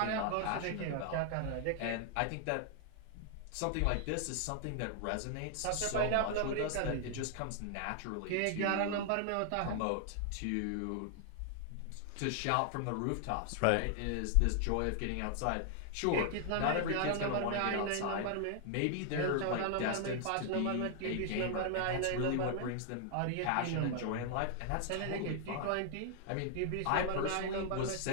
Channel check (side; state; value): both; different; correlation 0.00